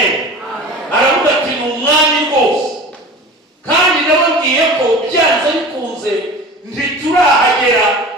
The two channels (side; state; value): both; normal; correlation 0.37